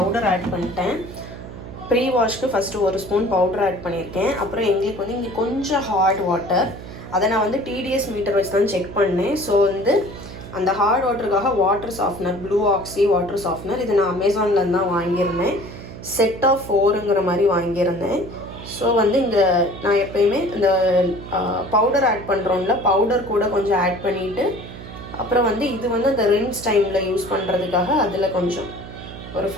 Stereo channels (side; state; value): right; noise; hum, 13 dB below the sound